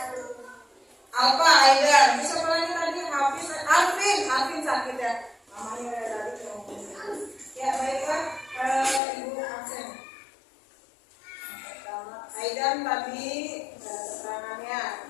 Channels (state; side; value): drops out; right; at 9.0 s